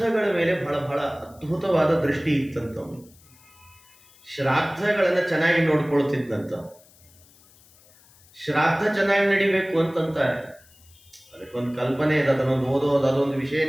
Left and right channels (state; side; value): noise; left; hiss, 27 dB below the sound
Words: ಮೇಲೆ ಬಹಳ ಬಹಳ ಅದ್ಭುತವಾದ ದೃಷ್ಟಿ ಇತ್ತಂತ. ಶ್ರಾದ್ದಗಳನ್ನು ಚೆನ್ನಾಗಿ ನೋಡ್ಕೊಳ್ತಿದ್ದಂತ. ಶ್ರಾದ್ದ ಚೆನ್ನಾಗಿ ನಡಿಬೇಕು ಅಂತಂತಾರೆ. ಅದಕ್ಕೊಂದು ಕಲ್ಪನೆ ಇದೆ, ಅದನ್ನೊಂದು ಓದೋದು, ಅದೊಂದು